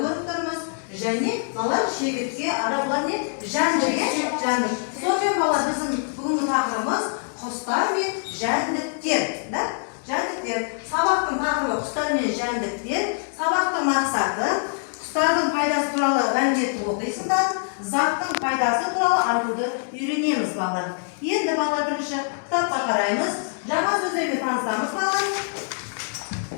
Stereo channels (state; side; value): silent; right; 62 dB below the other